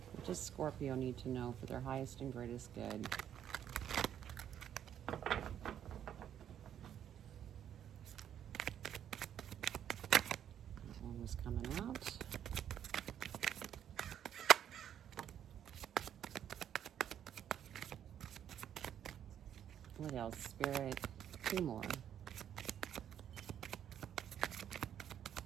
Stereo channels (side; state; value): left; quieter; 9.8 dB